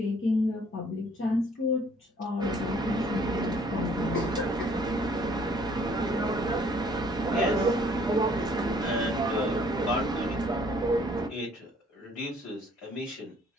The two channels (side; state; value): both; normal; correlation 0.60